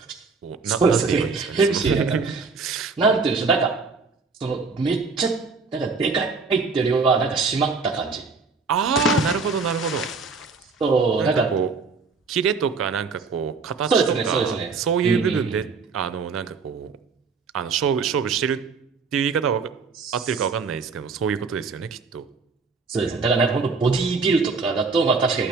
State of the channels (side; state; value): left; quieter; 4.6 dB